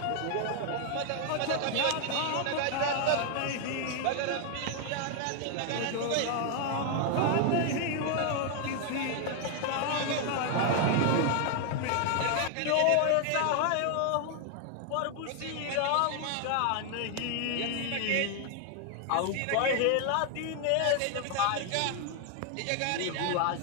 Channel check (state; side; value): different; both; correlation 0.00